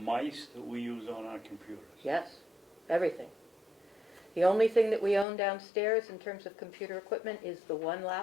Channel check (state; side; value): drops out; right; at 5.2 s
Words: that we use on our computers. Yes, everything. The only thing that we own downstairs in terms of computer equipment is the 1